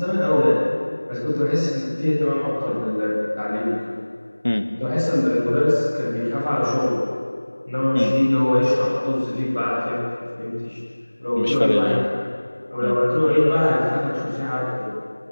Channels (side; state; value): both; inverted; correlation -1.00